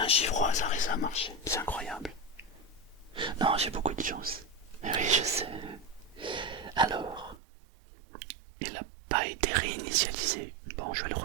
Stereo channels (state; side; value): drops out; left; at 7.4 s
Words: chiffre au hasard et ça a marché. C'est incroyable. Non, j'ai beaucoup de chance. Mais oui, je sais. Alors, il n'a pas été réinitialisé. Bon, je vais le